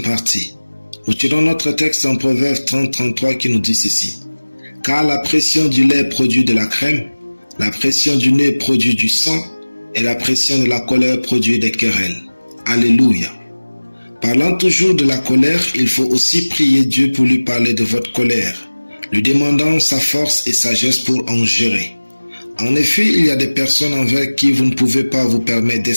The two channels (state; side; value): inverted; both; correlation -1.00